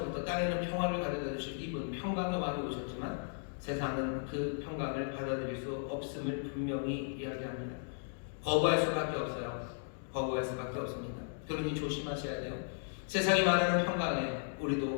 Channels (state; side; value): silent; right; digital silence